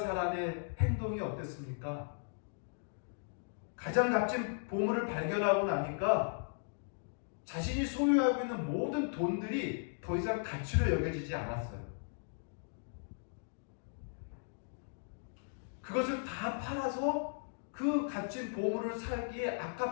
행동이 어땠습니까? 가장 값진 보물을 발견하고 나니까 자신이 소유하고 있는 모든 돈들이 더 이상 가치로 여겨지지 않았어요. 그것을 다 팔아서 그 값진 보물을 살기에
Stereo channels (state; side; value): silent; right; digital silence